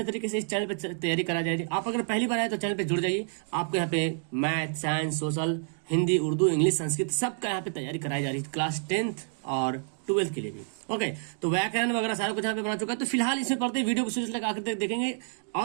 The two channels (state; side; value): silent; left; digital silence